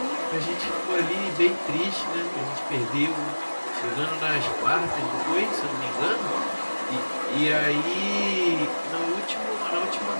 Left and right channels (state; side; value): inverted; both; correlation -1.00